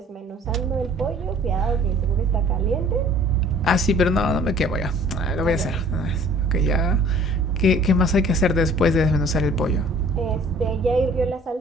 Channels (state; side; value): normal; both; correlation 0.52